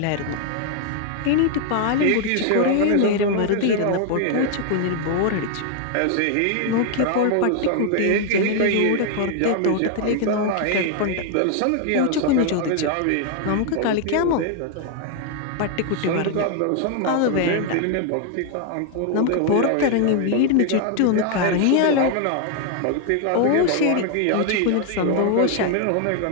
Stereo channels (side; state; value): both; different; correlation 0.00